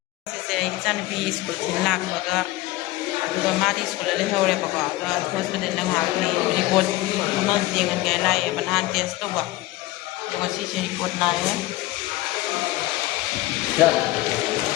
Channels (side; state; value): right; quieter; 17.9 dB